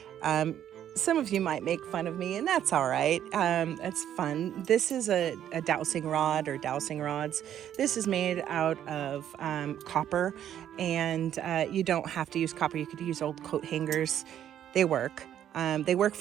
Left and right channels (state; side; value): quieter; left; 10.5 dB